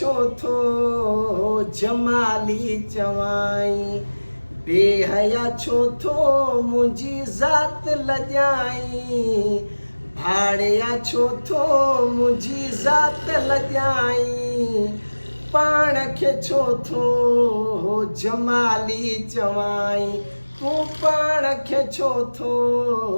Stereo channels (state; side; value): inverted; both; correlation -1.00